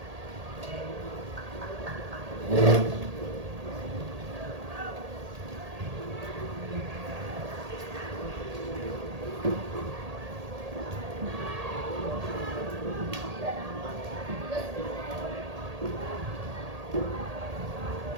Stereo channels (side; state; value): left; late; 1.8 ms